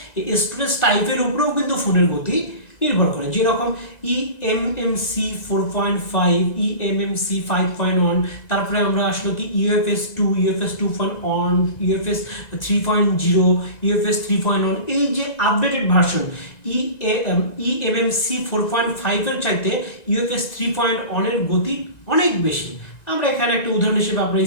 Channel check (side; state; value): right; late; 1.9 ms